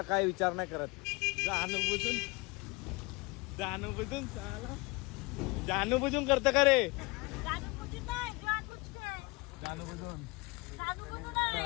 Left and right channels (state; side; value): quieter; right; 25.0 dB